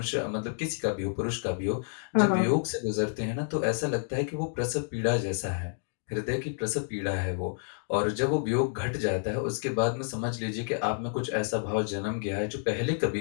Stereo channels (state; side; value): silent; right; 58 dB below the other